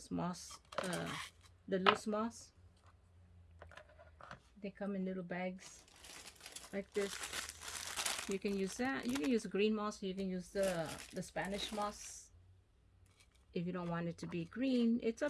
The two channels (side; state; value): both; identical; correlation 1.00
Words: moss, the loose moss. They come in little bags like this. You can use that. You can use green moss. You can use the Spanish moss. If you don't want it to be green, it's